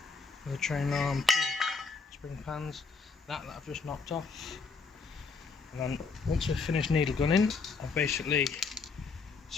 The train arm, spring pans, that I've just knocked off. And then once we've finished needle gunning, I've basically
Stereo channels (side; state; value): right; quieter; 4.7 dB